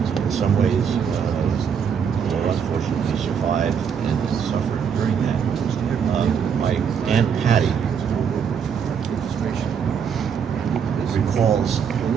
some ways unfortunately survived and suffered during that. My Aunt Patty recalls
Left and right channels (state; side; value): quieter; left; 7.2 dB